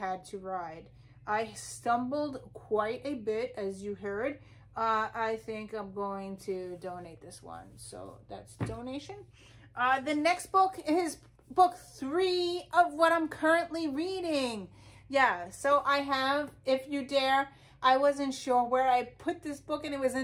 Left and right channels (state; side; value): identical; both; correlation 1.00